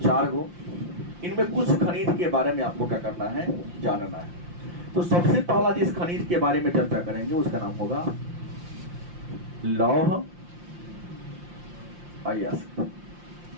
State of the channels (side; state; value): left; late; 5.7 ms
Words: गो। इनमें कुछ खनिज के बारे में आपको क्या करना है? जानना है। तो सबसे पहला जिस खनिज के बारे में चर्चा करेंगे उसका नाम होगा लौह अयस्क।